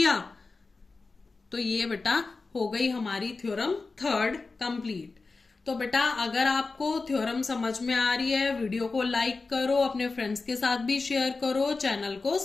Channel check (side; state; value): right; quieter; 3.9 dB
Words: तो ये बेटा हो गई हमारी थ्योरम थर्ड कंप्लीट। तो बेटा अगर आपको थ्योरम समझ में आ रही है, वीडियो को लाइक करो, अपने फ्रेंड्स के साथ भी शेयर करो, चैनल को